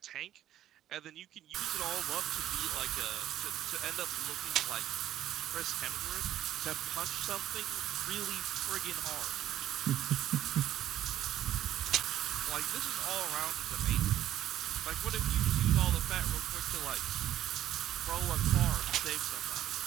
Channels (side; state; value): left; quieter; 12.2 dB